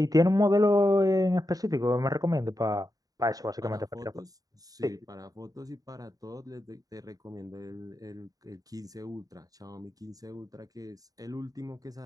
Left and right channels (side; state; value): left; late; 0.18 ms